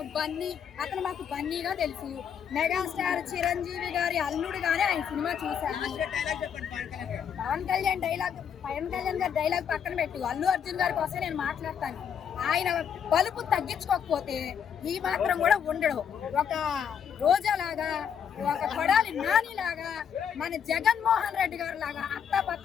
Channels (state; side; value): quieter; right; 7.9 dB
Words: బన్నీ, అతను మాకు బన్నీగా తెలుసు. మెగాస్టార్ చిరంజీవి గారి అల్లుడుగానే ఆయన సినిమా చూశాను. పవన్ కళ్యాణ్ గారి డైలాగ్ పక్కన పెట్టు, అల్లు అర్జున్ గారి కోసం నేను మాట్లాడతాను. ఆయన బలుపు తగ్గించుకోకపోతే ఈ మాత్రం కూడా ఉండడు. ఒక రోజాలాగా, ఒక కొడాలి నానిలాగా, మన జగన్మోహన్ రెడ్డి గారు లాగా